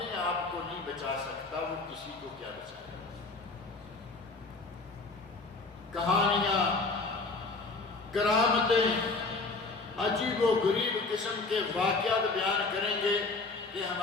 آپ کو نہیں بچا سکتا وہ کسی کو کیا بچائے۔ کہانیاں، کرامتیں، عجیب و غریب قسم کے واقعات بیان کریں گے کہ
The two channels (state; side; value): quieter; right; 3.7 dB